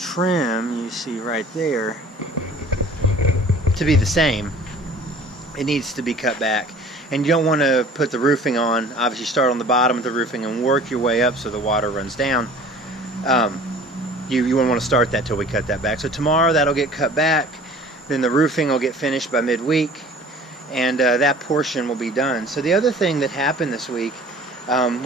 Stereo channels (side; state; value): both; normal; correlation 0.47